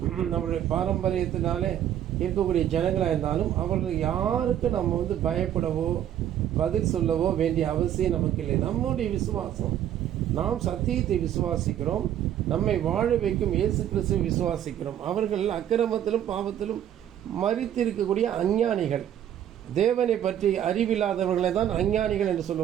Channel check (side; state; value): left; quieter; 10.7 dB